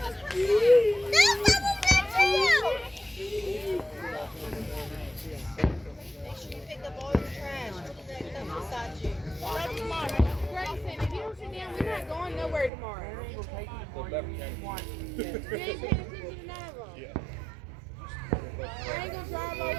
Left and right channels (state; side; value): drops out; left; at 12.7 s